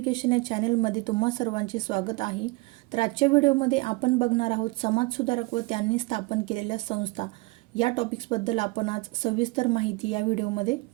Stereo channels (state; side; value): quieter; left; 24.3 dB